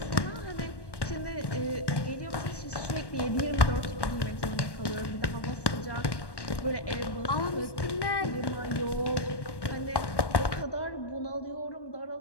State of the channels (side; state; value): right; late; 1.1 ms